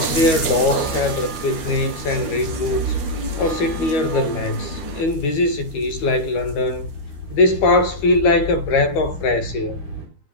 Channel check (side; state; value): right; late; 12 ms